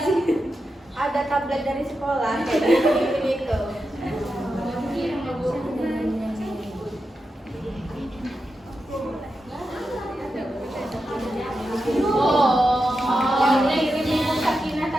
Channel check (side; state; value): both; normal; correlation 0.89